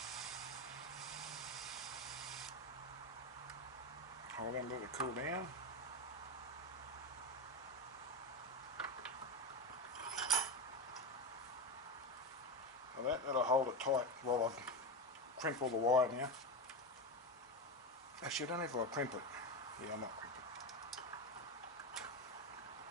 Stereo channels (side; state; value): both; normal; correlation 0.16